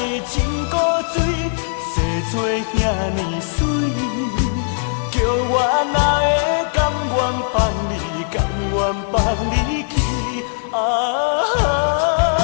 真古锥，生做遐尼水，叫我哪会甘愿放你，甘愿放你去啊！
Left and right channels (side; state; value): right; silent; 64 dB below the other